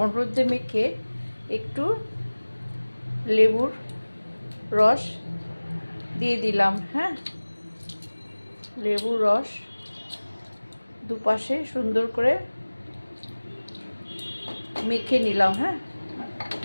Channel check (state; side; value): inverted; both; correlation -1.00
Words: হলুদ দিয়ে মেখে একটু লেবুর রস দিয়ে দিলাম। হ্যাঁ, লেবুর রস দুপাশে সুন্দর করে মেখে নিলাম। হ্যাঁ,